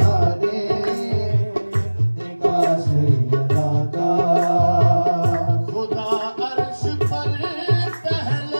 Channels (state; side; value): inverted; both; correlation -1.00